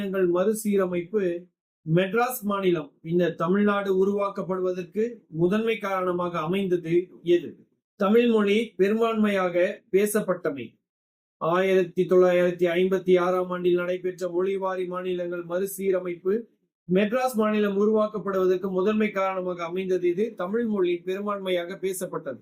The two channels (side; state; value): both; identical; correlation 1.00